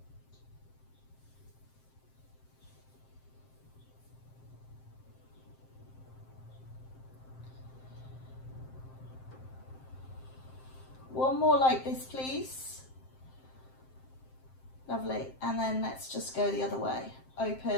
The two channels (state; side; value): late; right; 7.6 ms